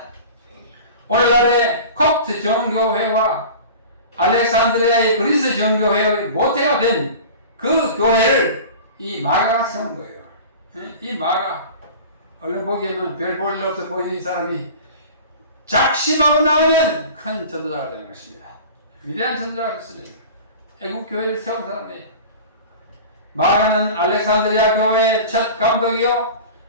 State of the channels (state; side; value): inverted; both; correlation -0.37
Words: 오늘날의 콥트 정교회와 알렉산드리아의 그리스 정교회의 모태가 된 그 교회를 이 마가가 세운 거예요. 이 마가 얼른 보기에는 별 볼 일 없어 보이는 이 사람이 작심하고 나오면 큰 전도자가 되는 것입니다. 위대한 전도자가 됐습니다. 애국 교회를 세운 사람이에요. 마가는 알렉산드리아 교회의 첫 감독이요